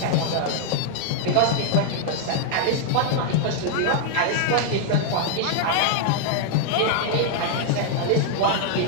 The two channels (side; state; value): both; different; correlation 0.00